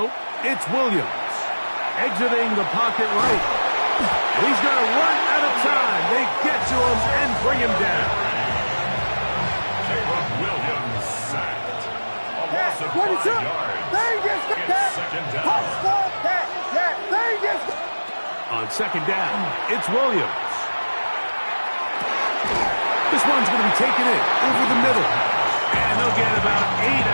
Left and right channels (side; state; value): both; inverted; correlation -1.00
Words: it's Williams. Exiting the pocket right. He's going to run out of time. They get to him and bring him down. Williams sacked. A loss of 5 yards. It's second down. On second down, it's Williams. This one's going to be taken in over the middle. And they'll get about 8